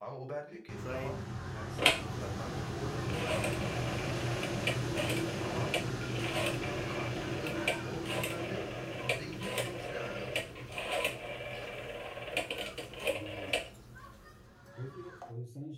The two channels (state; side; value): identical; both; correlation 1.00